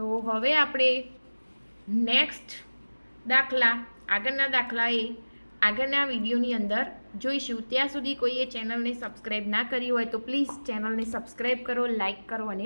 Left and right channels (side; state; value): both; inverted; correlation -1.00